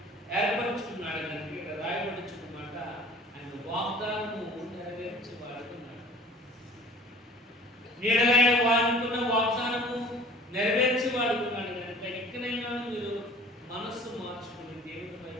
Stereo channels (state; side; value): normal; both; correlation 0.47